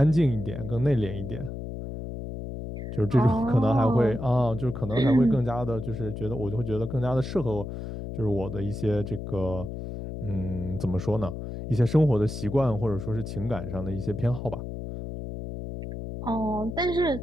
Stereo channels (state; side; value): noise; left; hum, 7 dB below the sound